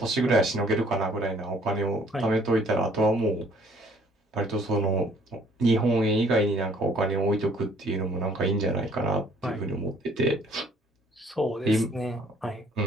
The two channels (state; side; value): normal; both; correlation 0.60